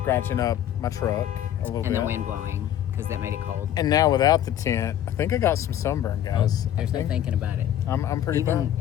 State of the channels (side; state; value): right; quieter; 11.1 dB